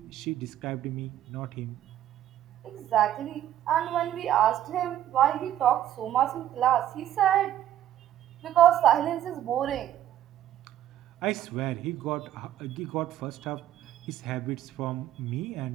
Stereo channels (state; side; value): quieter; left; 11.9 dB